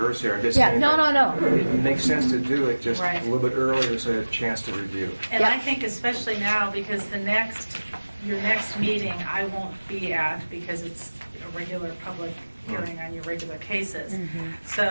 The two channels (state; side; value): inverted; both; correlation -1.00